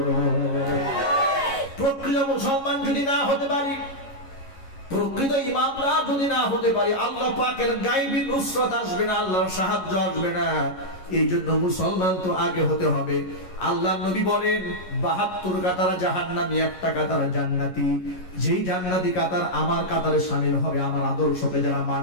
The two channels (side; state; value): right; late; 11 ms